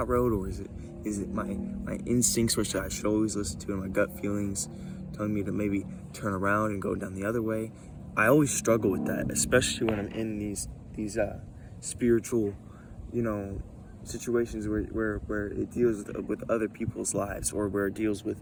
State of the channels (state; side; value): identical; both; correlation 1.00